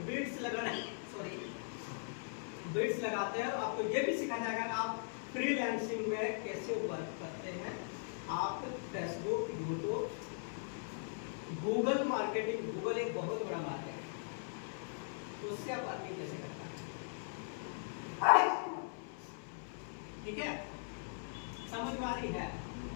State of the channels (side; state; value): right; silent; 51 dB below the other